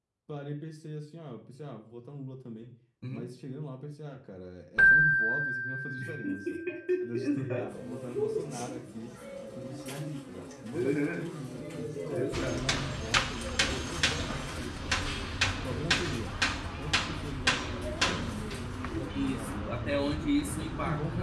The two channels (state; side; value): identical; both; correlation 1.00